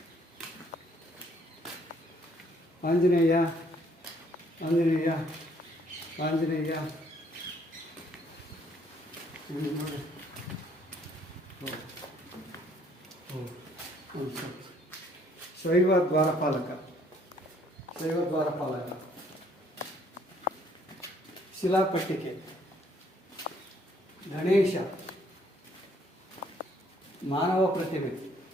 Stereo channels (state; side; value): normal; both; correlation 0.64